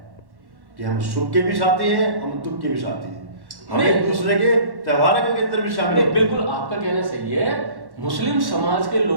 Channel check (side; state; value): left; late; 1.1 ms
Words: कि हम सुख के भी साथी हैं, हम दुख के भी साथी हैं, हम एक दूसरे के त्योहारों के अंदर भी शामिल हैं। बिल्कुल आपका कहना सही है। मुस्लिम समाज के